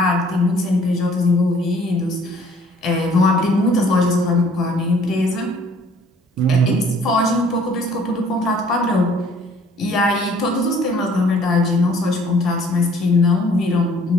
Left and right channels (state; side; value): normal; both; correlation 0.57